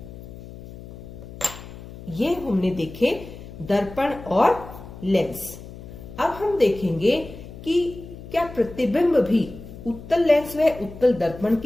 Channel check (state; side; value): noise; left; hum, 15 dB below the sound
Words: ये हमने देखे दर्पण और लेंस। अब हम देखेंगे कि क्या प्रतिबिंब भी उत्तल लेंस व उत्तल दर्पण